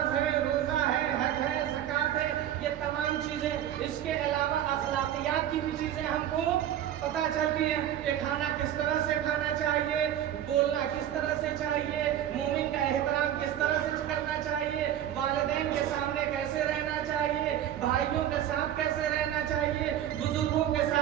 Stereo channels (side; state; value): left; quieter; 11.1 dB